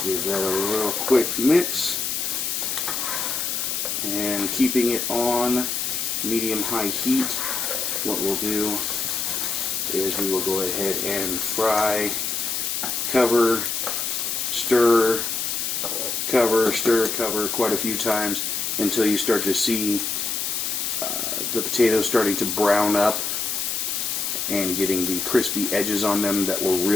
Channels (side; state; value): left; noise; hiss, 1 dB below the sound